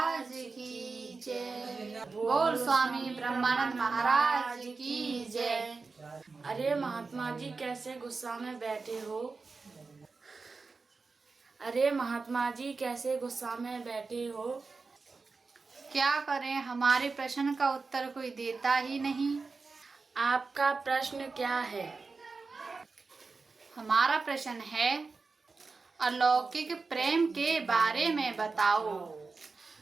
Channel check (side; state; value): left; quieter; 4.3 dB